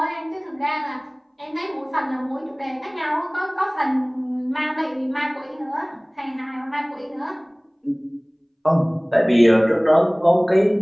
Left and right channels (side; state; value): both; identical; correlation 1.00